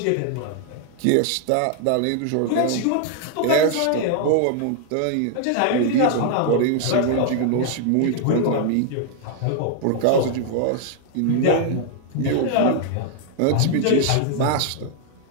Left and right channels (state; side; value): different; both; correlation 0.00